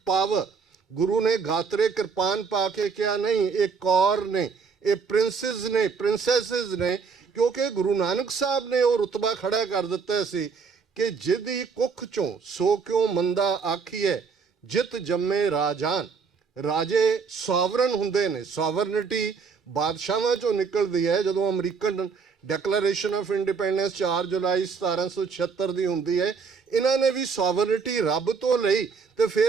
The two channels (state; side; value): quieter; left; 5.5 dB